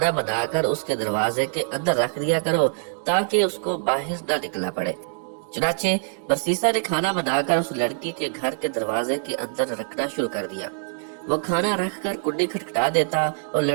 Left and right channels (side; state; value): left; silent; digital silence